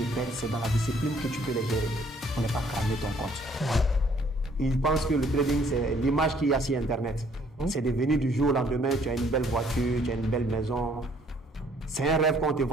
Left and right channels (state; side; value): normal; both; correlation 0.62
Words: bêtes, c'est dans la discipline que tu peux les gérer pour ne pas cramer ton compte. Ils pensent que le trading, c'est l'image qu'il y a sur Internet. C'est devenu du jour au lendemain, tu as une belle voiture, tu as une belle maison. C'est un rêve qu'on te